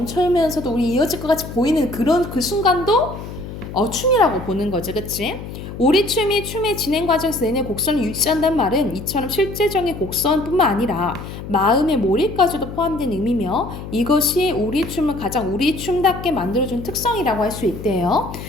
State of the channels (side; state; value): left; noise; hum, 10 dB below the sound